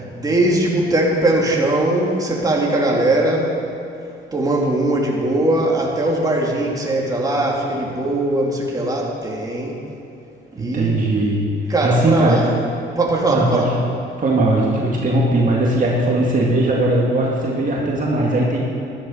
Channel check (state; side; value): normal; both; correlation 0.56